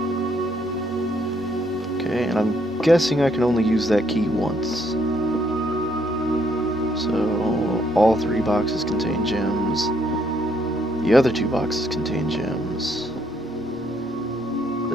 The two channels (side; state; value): right; noise; rumble, 26 dB below the sound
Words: Okay, and I'm guessing I can only use that key once. So, all 3 boxes contain gems. The other 2 boxes contain gems.